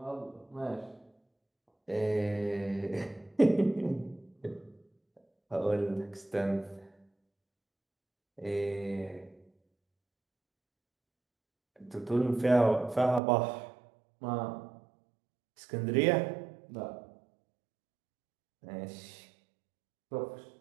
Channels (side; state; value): left; drops out; at 13.2 s